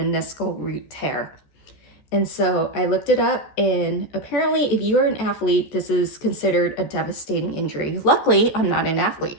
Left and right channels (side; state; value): right; late; 14 ms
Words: root tear. And so I looked it up, and apparently if you are an athlete, this is considered a devastating injury. Luckily, I'm not an